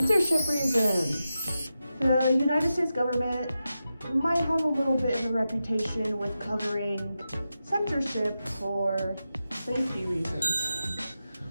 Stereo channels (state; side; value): inverted; both; correlation -0.90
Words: reasons. The United States government might have a little bit of a reputation with covering censorship for safety reasons.